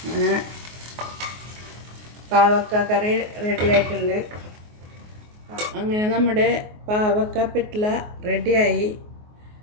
അങ്ങനെ പാവക്ക കറി റെഡി ആയിട്ടുണ്ട്. അങ്ങനെ നമ്മുടെ പാവക്ക പിറ്റ്ല റെഡിയായി.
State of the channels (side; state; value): left; late; 24 ms